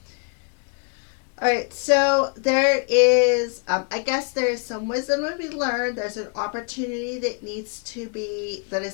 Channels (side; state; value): right; quieter; 39.3 dB